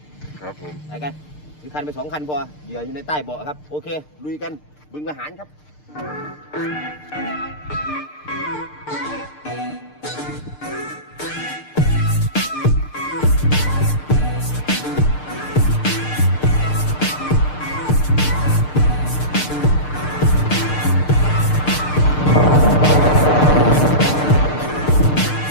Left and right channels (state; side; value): late; right; 6.6 ms